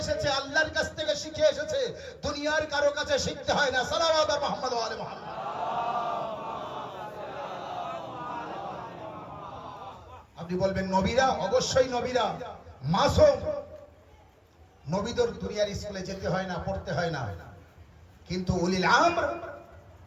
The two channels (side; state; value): both; identical; correlation 1.00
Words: আল্লাহর কাছ থেকে শিখে এসেছে, দুনিয়ার কারো কাছে শিখতে হয় না। সালাওয়াত মুহাম্মদ ওয়া আলি মুহাম্মদ। আপনি বলবেন নবীরা, অবশ্যই নবীরা মাসুম, নবীদের দুনিয়ার স্কুলে যেতে হয় না, পড়তে হয় না। কিন্তু উলিল আমর